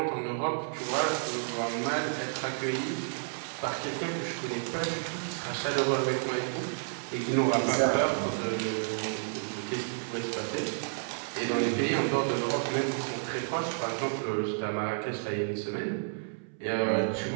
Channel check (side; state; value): left; silent; 57 dB below the other